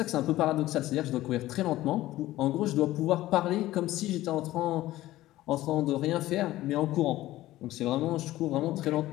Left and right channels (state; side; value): quieter; right; 15.9 dB